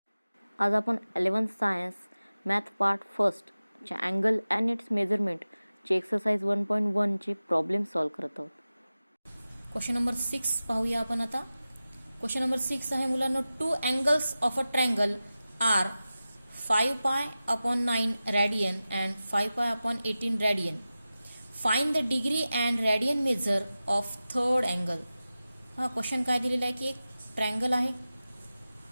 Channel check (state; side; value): inverted; both; correlation -0.95